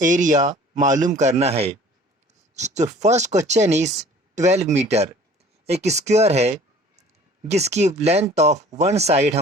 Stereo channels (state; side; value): normal; both; correlation 0.49